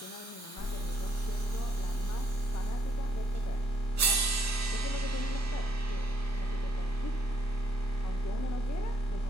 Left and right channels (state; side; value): normal; both; correlation 0.71